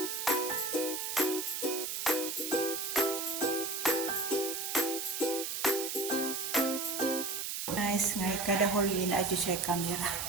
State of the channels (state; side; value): noise; right; hiss, 3 dB below the sound